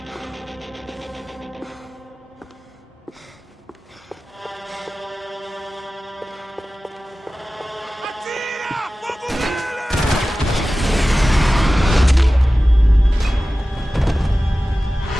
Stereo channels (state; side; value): normal; both; correlation 0.96